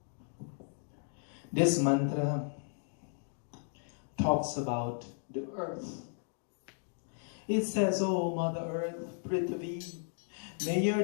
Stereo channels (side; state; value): right; silent; digital silence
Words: This mantra talks about the earth. It says, "O Mother Earth, Prithvi, may